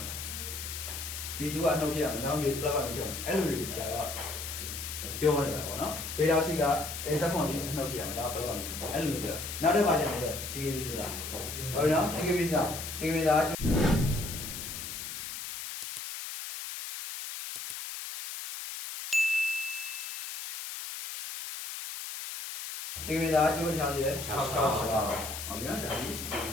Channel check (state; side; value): noise; left; hiss, 7 dB below the sound